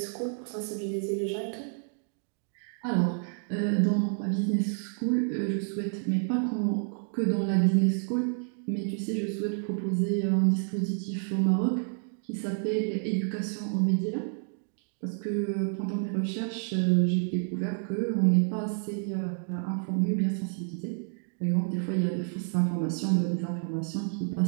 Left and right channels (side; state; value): left; silent; 58 dB below the other